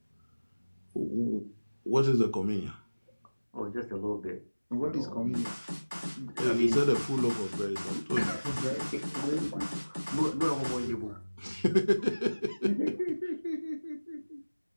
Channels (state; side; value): inverted; both; correlation -1.00